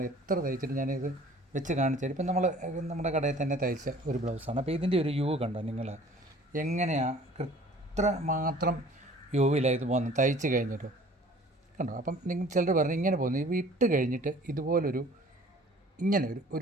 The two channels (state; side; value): normal; both; correlation 0.50